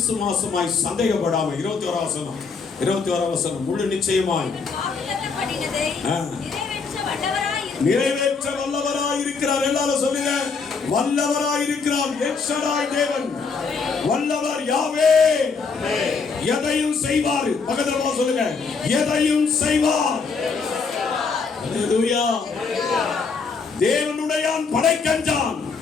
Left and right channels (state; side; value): quieter; right; 5.0 dB